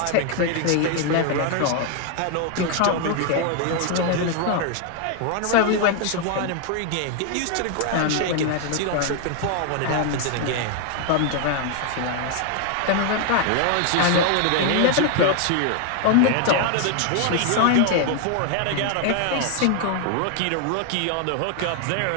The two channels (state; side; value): different; both; correlation 0.00